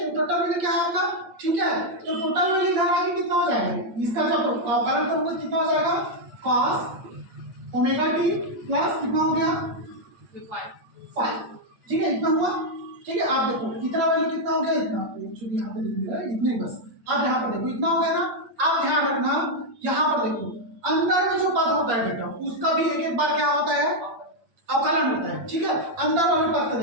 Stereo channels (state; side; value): late; left; 8.7 ms